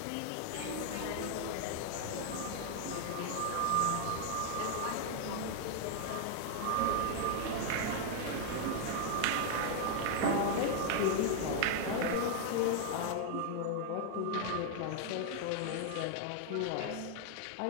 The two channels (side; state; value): both; different; correlation 0.00